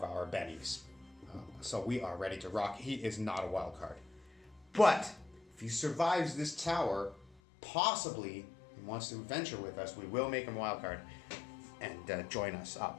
our bennies. So we are ready to rock. He is not a wild card. But if he survives this tower, possibly and wants to adventure with us, we will make him a wild card and join us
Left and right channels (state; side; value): drops out; right; at 7.4 s